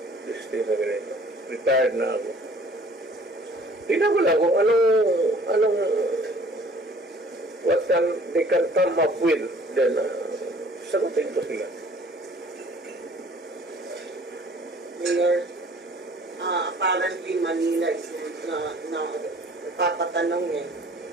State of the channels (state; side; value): normal; both; correlation 0.53